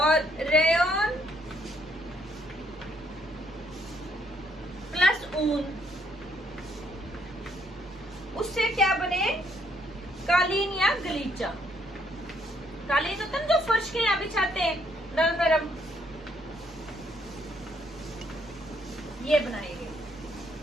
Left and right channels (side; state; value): both; normal; correlation 0.70